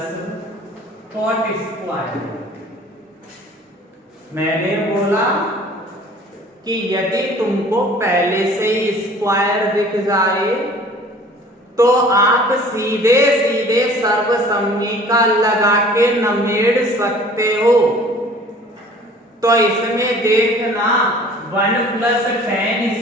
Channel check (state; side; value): normal; both; correlation 0.49